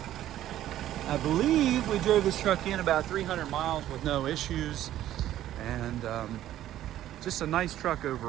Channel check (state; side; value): quieter; left; 12.8 dB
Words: I believe we drove this truck in about 300 miles with no issues, and just a nice truck